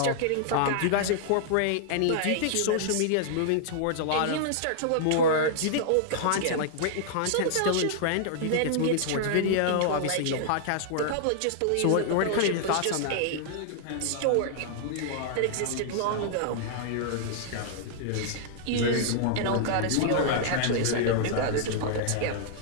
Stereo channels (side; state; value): both; different; correlation -0.01